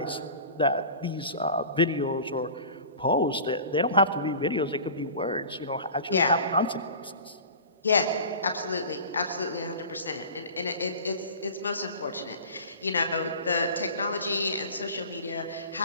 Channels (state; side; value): inverted; both; correlation -0.39